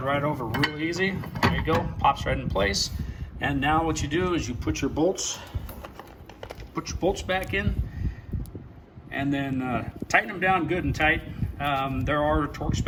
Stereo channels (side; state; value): both; identical; correlation 1.00